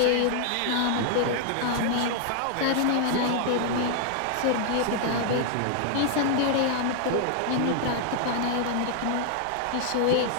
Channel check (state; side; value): different; both; correlation 0.00